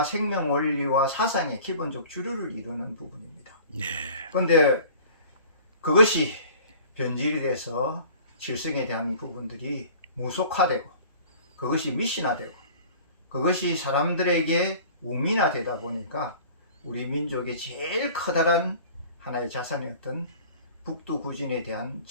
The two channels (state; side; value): inverted; both; correlation -0.45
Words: 생명 원리와 사상의 기본적 주류를 이루는 부분입니다. 그런데 그것이 변질이 돼서 칠성에 대한 부분들이 무속화되고 그것이 미신화되고 그것이 사람들에게 우민화되다 보니까 우리 민족의 제일 커다란 하나의 자산이었던 북두구진에 대한